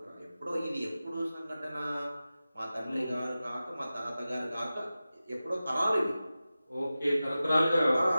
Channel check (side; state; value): both; inverted; correlation -0.95